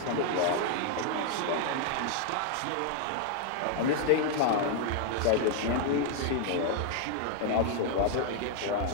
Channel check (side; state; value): both; different; correlation 0.00